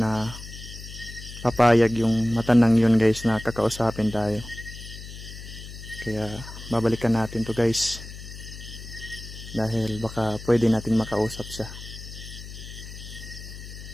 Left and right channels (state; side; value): noise; left; hum, 13 dB below the sound